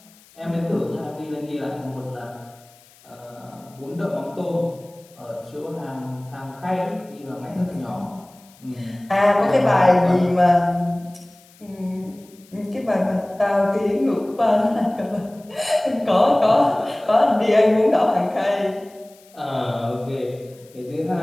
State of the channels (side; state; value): left; noise; hiss, 27 dB below the sound